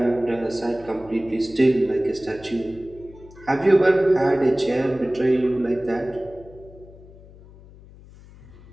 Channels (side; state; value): left; noise; hum, 21 dB below the sound